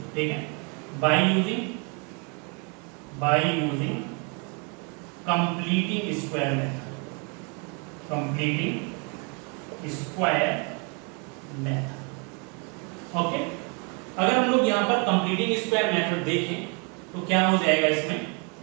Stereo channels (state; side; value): quieter; left; 34.6 dB